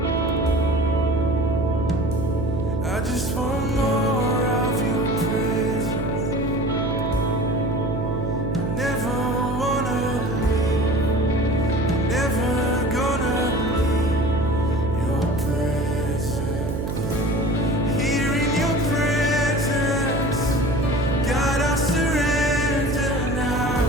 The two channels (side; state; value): right; noise; hum, 3 dB below the sound